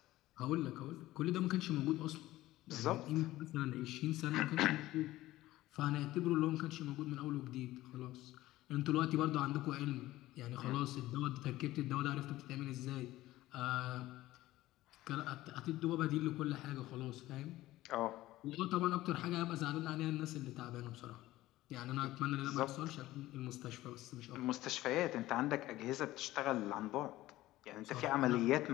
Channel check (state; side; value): quieter; right; 16.4 dB